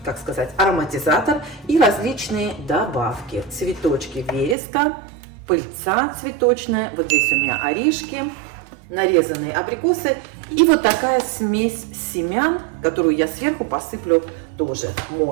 как сказать, ароматизатор и различные добавки. Цветочки вереска, пыльца цветочная, вот здесь у меня орешки, нарезанные абрикосы и вот такая смесь семян, которую я сверху посыплю тоже,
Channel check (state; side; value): drops out; left; at 4.5 s